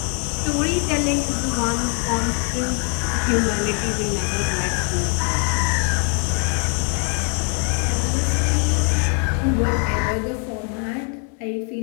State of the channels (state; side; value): quieter; right; 39.0 dB